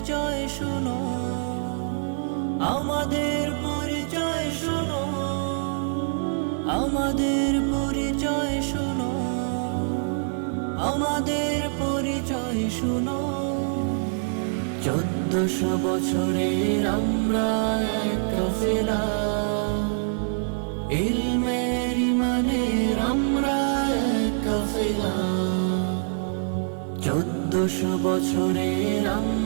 শুনো, আমাদের পরিচয় শুনো, আমাদের পরিচয় শুনো, আমাদের পরিচয় শুনো। 1400 বছরের আমরা এক কাফেলা, ইলমের ইমানের আমরা এক কাফেলা। 1400 বছরের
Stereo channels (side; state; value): left; silent; 62 dB below the other